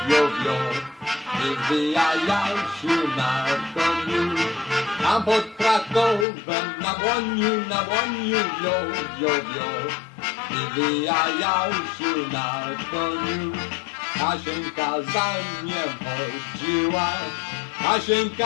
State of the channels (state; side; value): drops out; right; at 6.2 s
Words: wio, wio. Wywijał się na koniu. Tam pod Krakowem na dłoniu, wio, wio, wio. Wywijał się na koniu. Kasieńka za nim chodziła,